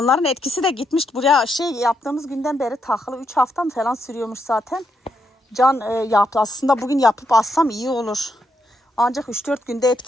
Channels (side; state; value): both; normal; correlation 0.79